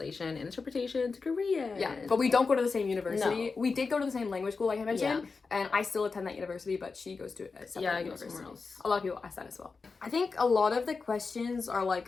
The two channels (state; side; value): quieter; right; 4.5 dB